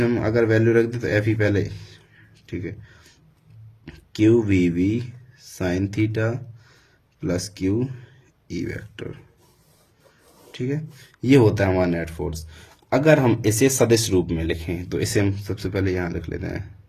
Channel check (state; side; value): identical; both; correlation 1.00